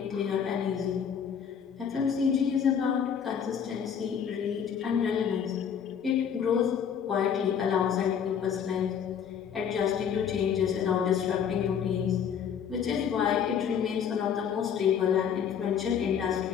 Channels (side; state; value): right; quieter; 7.8 dB